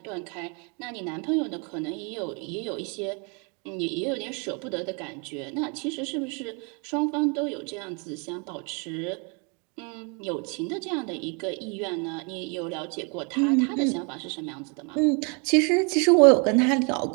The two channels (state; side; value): quieter; left; 34.4 dB